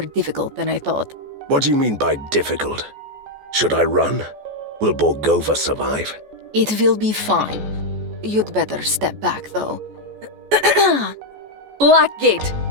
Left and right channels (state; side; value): late; left; 14 ms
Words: than I thought. What do you mean by difficult? Should I run? Will Borgova survive? It will be fine. You'd better step back, though. Blackgate,